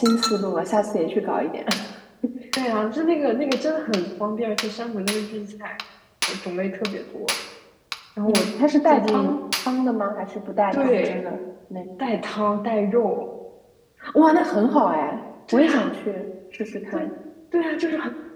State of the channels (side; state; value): both; identical; correlation 1.00